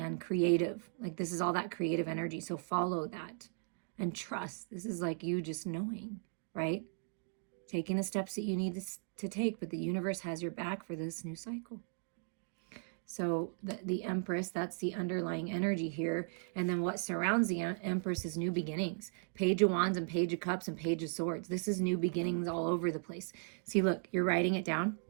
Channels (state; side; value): silent; left; 53 dB below the other